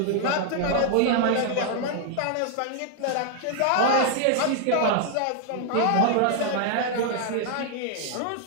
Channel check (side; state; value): both; different; correlation 0.00